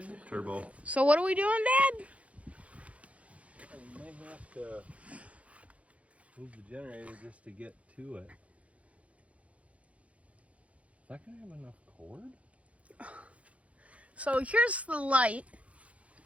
turbo. So what are we doing, Dad? We might have to move the generator just to get to it. Is that gonna have enough cord? So here's the light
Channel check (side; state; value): left; late; 0.064 ms